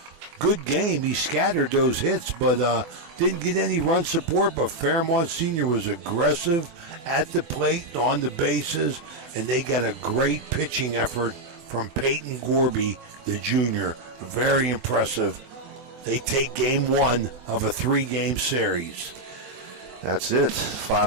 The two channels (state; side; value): late; left; 23 ms